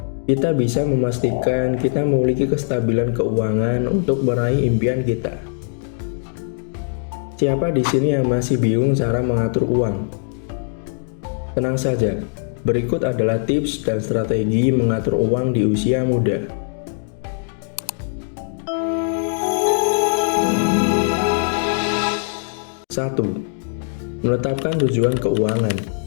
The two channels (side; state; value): right; silent; digital silence